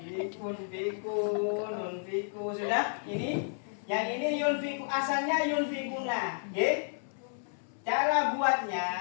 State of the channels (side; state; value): right; silent; 56 dB below the other